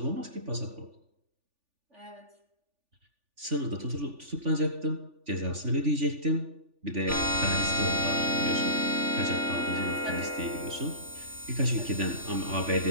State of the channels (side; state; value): left; late; 3.4 ms